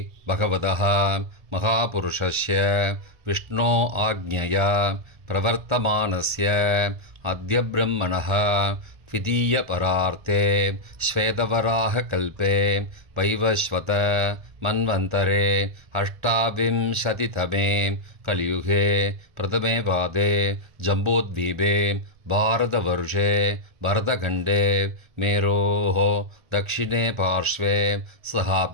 பகவதः மகாபுருஷஸ்ய விஷ்ணோ ஆக்ஞயா பிரவர்த்தமானஸ்ய அத்ய பிரம்மணः த்விதீய பரார்த்தே ஸ்வேதவராக கல்பே வைவஸ்வத மன்வந்தரே அஷ்டாவிம்சதிதமே கலியுகே பிரதமே பாதே ஜம்போத்வீபே பாரதவர்ஷே பரதகண்டே மேரோः दक्षिणे पार्श्वे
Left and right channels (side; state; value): left; late; 1.3 ms